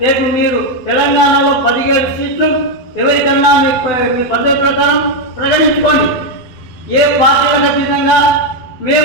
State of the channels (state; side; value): late; right; 12 ms